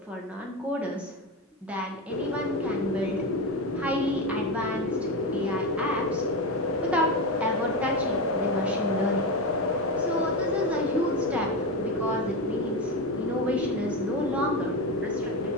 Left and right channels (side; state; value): both; normal; correlation 0.16